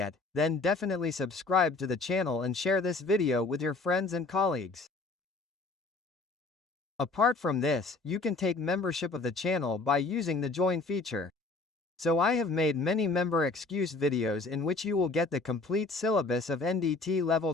then definitely subscribe to the channel and share this video with your friends and colleagues. Apart from this, you can take membership of the channel by using the join feature. So I have made many member excuse videos in which you will get the complete syllabus of NDT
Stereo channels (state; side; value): quieter; right; 3.5 dB